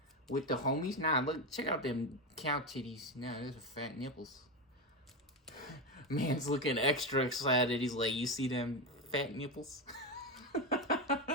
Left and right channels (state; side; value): normal; both; correlation 0.13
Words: with the homies. Nah, look, check out them cow titties. Nah, those are fat nipples. Man's looking extra excited. He's like, you see them fat nipples?